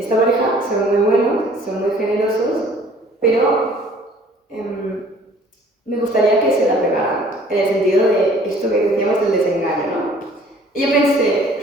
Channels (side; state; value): both; normal; correlation 0.54